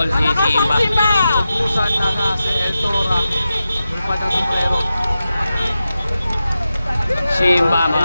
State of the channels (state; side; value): inverted; both; correlation -0.91